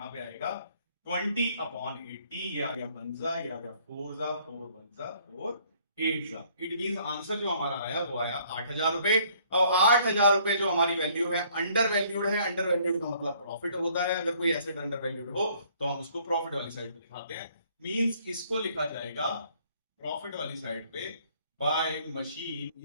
पे आएगा 20/80, ये आ गया 1 ये आ गया 4 4 1 4 8। इट मीन आंसर जो हमारा आया वो आया 8,000 रुपए। और 8,000 रुपए जो हमारी वैल्यू है अंडर वैल्यूड है, अंडर वैल्यूड का मतलब प्रॉफिट होता है, अगर कोई एसेट अंडर वैल्यूड हो तो हम उसको प्रॉफिट वाली साइड पे दिखाते हैं, मींस इसको लिखा जाएगा प्रॉफिट वाली साइड पे बाय मशीन,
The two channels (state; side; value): inverted; both; correlation -0.62